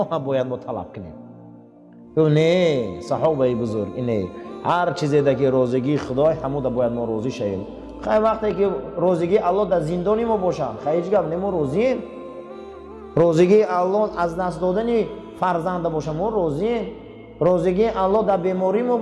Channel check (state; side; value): identical; both; correlation 1.00